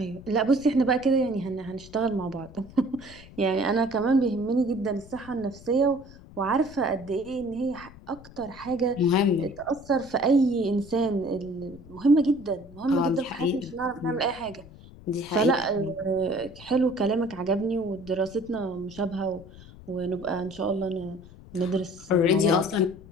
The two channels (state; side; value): noise; left; rumble, 19 dB below the sound